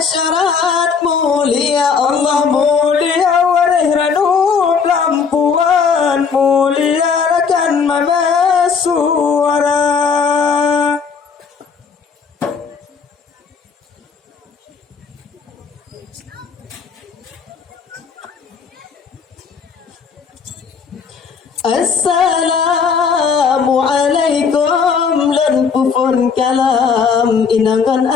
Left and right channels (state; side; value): quieter; right; 5.9 dB